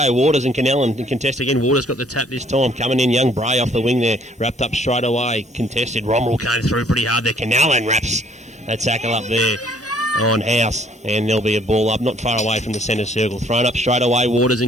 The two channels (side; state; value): both; normal; correlation 0.61